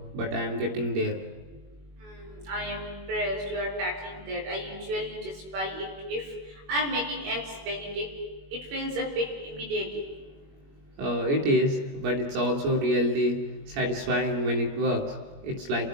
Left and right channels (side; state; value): left; late; 21 ms